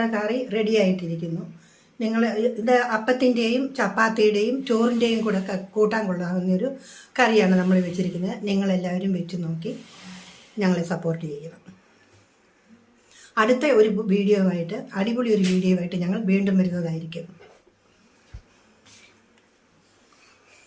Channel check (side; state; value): both; identical; correlation 1.00